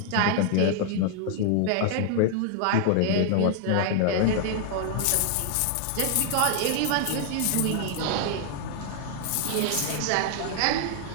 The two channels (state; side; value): different; both; correlation 0.00